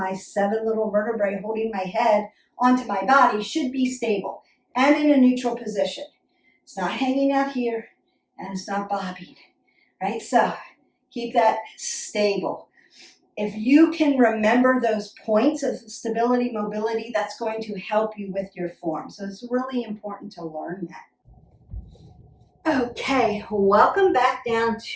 7 little vertebrae holding my head onto my body should be stable and in a neutral position. It's not hanging out here and it's not bobbing, right? So keep that stable. If you can remember those points of stability, mobility, that's going to help you with your form. So it's really important to learn that. Okay, welcome back down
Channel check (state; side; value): identical; both; correlation 1.00